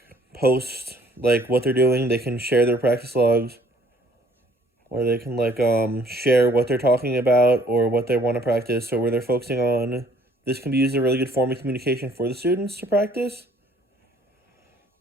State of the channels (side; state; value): both; normal; correlation 0.60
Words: post like what they're doing. They can share their practice logs, or they can like share what they're talking about or what they want to practice or where they're focusing on. This can be used as a really good form of communication for the students to practice,